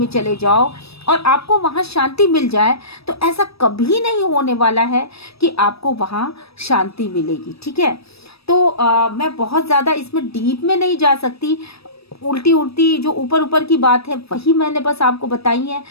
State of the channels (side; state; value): right; late; 0.78 ms